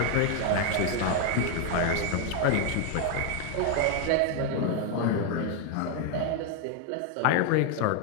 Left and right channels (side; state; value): both; different; correlation 0.01